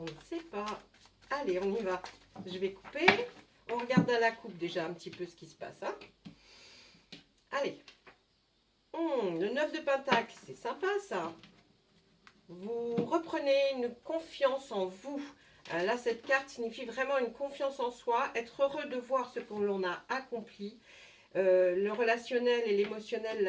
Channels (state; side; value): identical; both; correlation 1.00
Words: ne sait pas. Allez, on y va. Je vais couper. On regarde à la coupe déjà un petit peu ce qui se passe. Hein. Allez, le 9 de Pentacle, c'est sympa ça. Vous reprenez une confiance en vous. Là, cette carte signifie vraiment une confiance en soi, être heureux de voir ce que l'on a accompli. Le relationnel et l'émotionnel